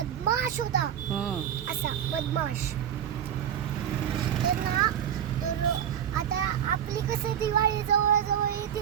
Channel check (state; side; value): quieter; left; 9.4 dB